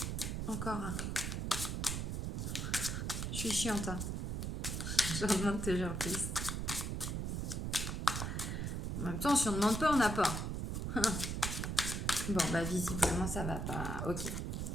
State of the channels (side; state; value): right; noise; rumble, 2 dB below the sound